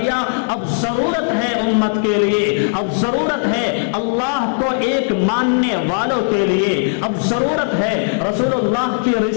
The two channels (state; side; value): silent; right; 65 dB below the other